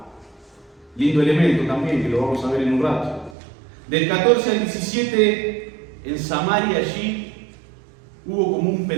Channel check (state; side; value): drops out; left; at 3.4 s